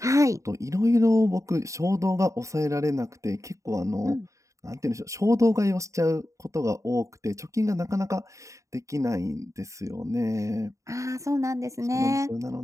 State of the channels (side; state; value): left; late; 0.15 ms